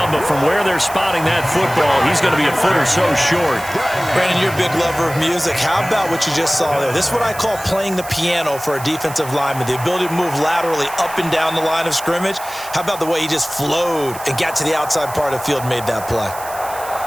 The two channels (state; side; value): noise; right; hiss, 14 dB below the sound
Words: but from where they're spotting that football, he's going to be a foot or so short. Brandon, you're a big lover of music. How about what you just saw there? This is what I call playing the piano for a defensive lineman, the ability to move laterally up and down the line of scrimmage. How about the way he just flowed and got to the outside part of the field and made that play?